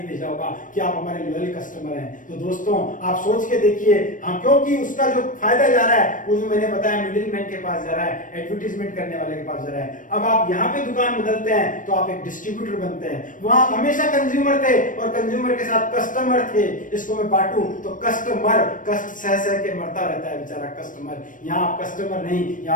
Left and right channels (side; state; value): right; late; 0.38 ms